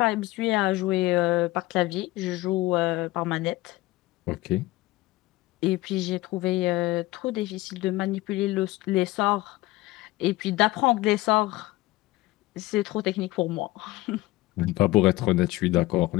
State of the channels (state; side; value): quieter; right; 18.9 dB